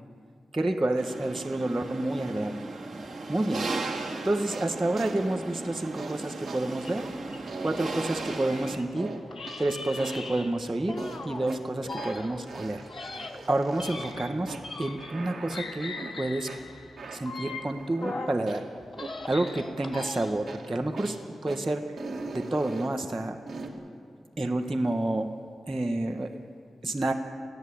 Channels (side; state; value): both; normal; correlation 0.94